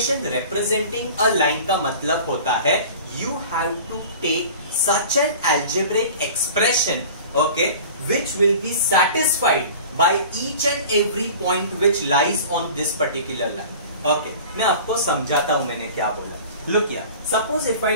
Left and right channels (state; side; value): inverted; both; correlation -0.41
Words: representing a line का मतलब होता है you have to take such an algebraic expression, okay, which will be satisfied by each and every point which lies on this particular line. Okay, मैं आपको समझाता हूँ मैंने क्या बोला. Look here, suppose if I